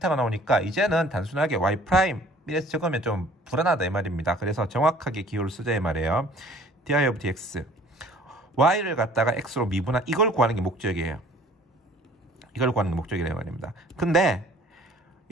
나오니까 이제는 단순하게 y' 이래서 적으면 좀 불안하다 이 말입니다. 그래서 정확하게 기호를 쓰자 이 말이에요. di of dx y를 갖다가 x로 미분한 이걸 구하는 게 목적이에요. 이걸 구하는 게 목적이라 말입니다. 근데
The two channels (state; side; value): normal; both; correlation 0.53